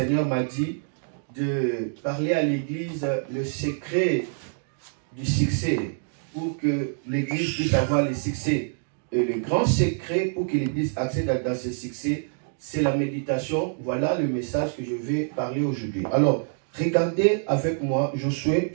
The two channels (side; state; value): left; silent; digital silence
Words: m'a dit de parler à l'Église le secret du succès, pour que l'Église puisse avoir le succès. Et le grand secret pour que l'Église accède dans ce succès, c'est la méditation. Voilà le message que je vais parler aujourd'hui. Alors, regardez avec moi Josué